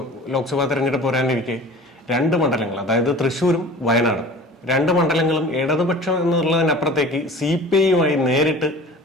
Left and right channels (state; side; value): normal; both; correlation 0.42